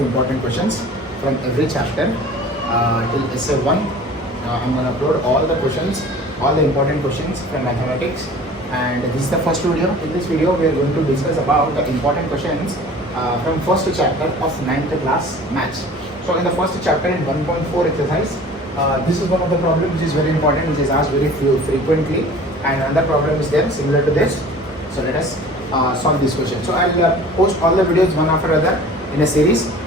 questions from every chapter till essay 1. I'm going to upload all the questions, all the important questions from mathematics, and this is the first video. In this video we are going to discuss about the important questions from first chapter of 9th class maths. So in the first chapter in 1.4 exercise, this is one of the problems which is very important, which is asked very frequently, and another problem is there similar to this. So let us solve this question. So I'll post all the videos one after other in a series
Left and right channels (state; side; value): normal; both; correlation 0.44